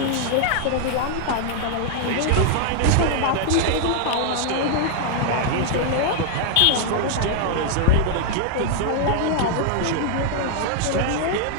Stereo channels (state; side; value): different; both; correlation -0.01